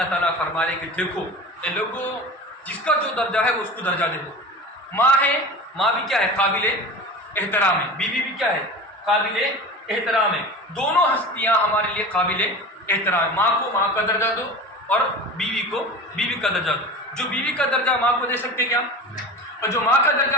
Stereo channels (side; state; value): both; normal; correlation 0.33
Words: تعالیٰ فرما رہے کہ دیکھو اے لوگوں جس کا جو درجہ ہے وہ اس کو درجہ دے دو۔ ماں ہے، ماں بھی کیا ہے؟ قابل احترام ہے، بیوی بھی کیا ہے؟ قابل احترام ہے۔ دونوں ہستیاں ہمارے لیے قابل احترام ہے۔ ماں کو ماں کا درجہ دو اور بیوی کو بیوی کا درجہ دو۔ جو بیوی کا درجہ ماں کو دے سکتے کیا؟ اور جو ماں کا